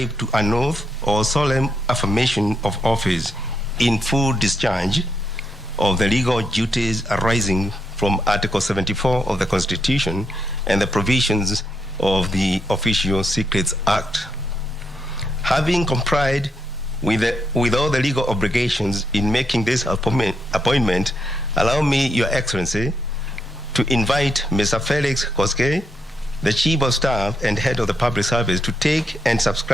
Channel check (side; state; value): both; normal; correlation 0.80